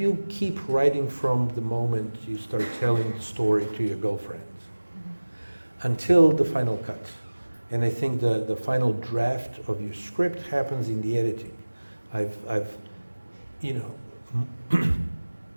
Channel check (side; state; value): both; inverted; correlation -1.00